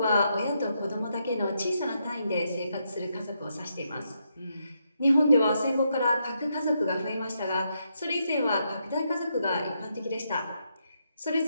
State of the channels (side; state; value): both; inverted; correlation -0.80